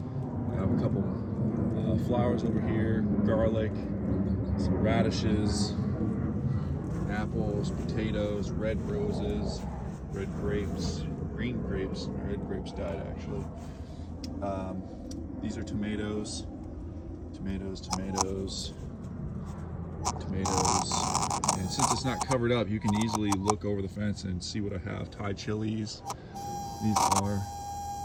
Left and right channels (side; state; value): both; identical; correlation 1.00